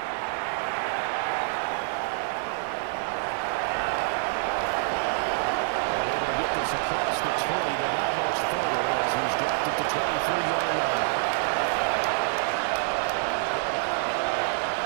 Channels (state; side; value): silent; left; digital silence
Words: Across the 20, but not much further as he's dropped it to 23-yard line.